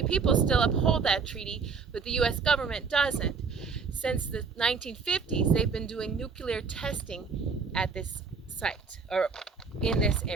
people still uphold that treaty, but the U.S. government doesn't. Since the 1950s, they've been doing nuclear testing at this site, or in this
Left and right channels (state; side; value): quieter; left; 5.2 dB